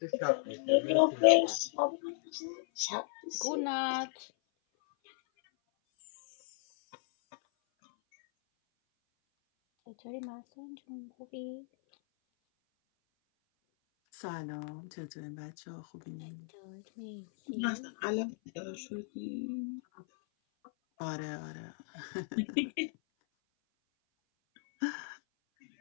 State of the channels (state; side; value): silent; right; 54 dB below the other